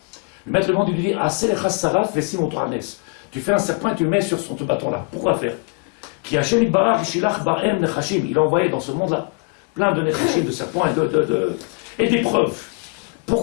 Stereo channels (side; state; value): right; quieter; 35.6 dB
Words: Le maître du monde, il lui dit, tu fais un serpent et tu le mets sur ce bâton-là. Pourquoi faire? Il a envoyé dans ce monde-là plein de nechashim, de serpents et d'épreuves.